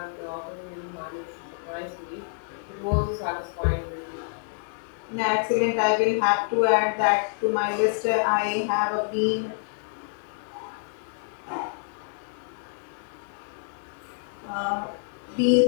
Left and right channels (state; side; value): silent; right; 60 dB below the other